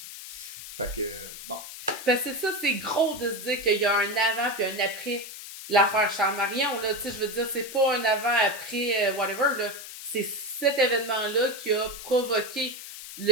Fait que, bon. Parce que ça, c'est gros de se dire qu'il y a un avant puis un après l'affaire Charles Marion, là. Tu sais, je veux dire, c'est pas un avant, après, whatever, là. C'est cet événement-là qui a provoqué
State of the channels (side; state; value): left; noise; hiss, 12 dB below the sound